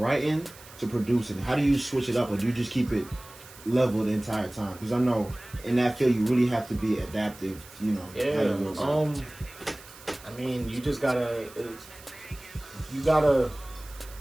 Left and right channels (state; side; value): noise; right; hiss, 20 dB below the sound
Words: to producing? How do you switch it up, or do you just keep it level the entire time? Because I know in that field you really have to be adaptive. Yeah. How you work I mean, you gotta